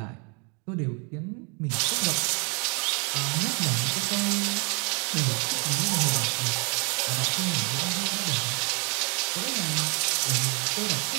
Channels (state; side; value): quieter; left; 34.1 dB